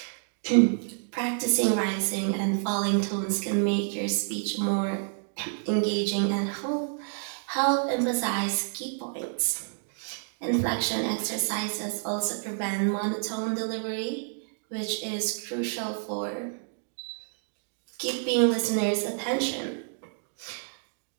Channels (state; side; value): silent; left; digital silence